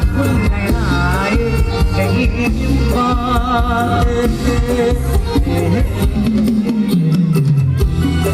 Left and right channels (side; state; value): both; identical; correlation 1.00